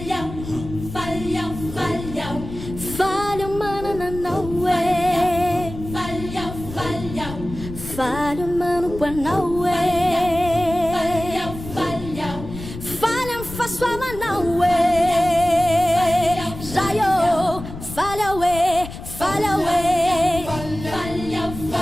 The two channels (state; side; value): noise; left; rumble, 11 dB below the sound